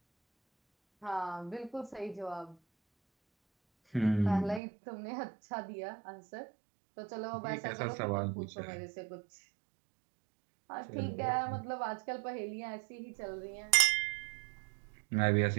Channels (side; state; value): left; drops out; at 4.6 s